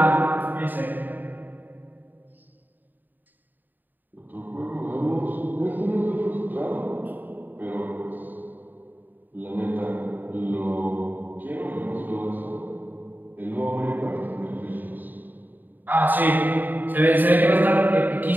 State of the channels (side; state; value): left; late; 0.088 ms